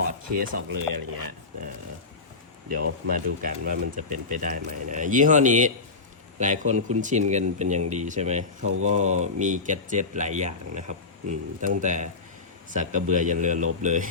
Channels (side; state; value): right; quieter; 4.1 dB